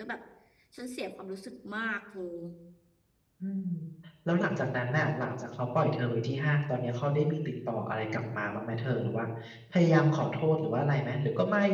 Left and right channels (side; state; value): both; identical; correlation 1.00